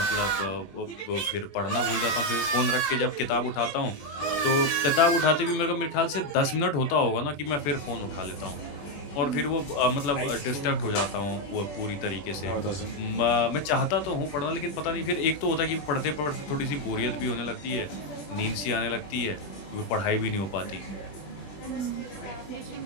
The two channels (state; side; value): late; right; 20 ms